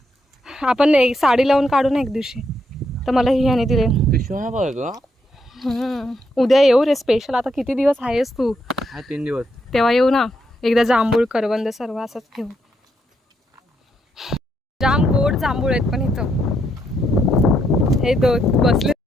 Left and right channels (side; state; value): both; normal; correlation 0.78